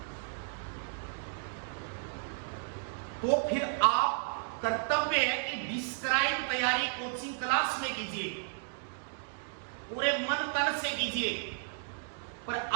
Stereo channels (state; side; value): silent; left; digital silence